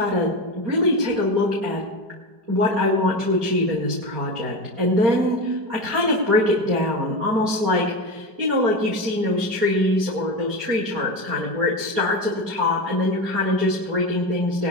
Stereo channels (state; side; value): late; left; 4.9 ms